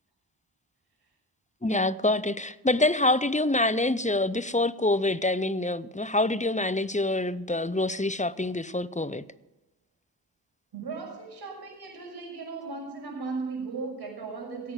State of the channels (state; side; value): normal; both; correlation 0.31